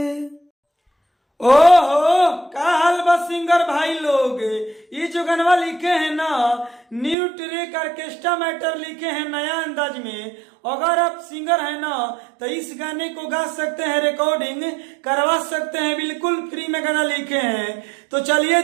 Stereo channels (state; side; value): drops out; left; at 7.2 s